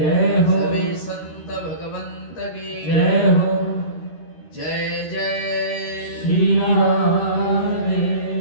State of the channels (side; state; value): right; late; 13 ms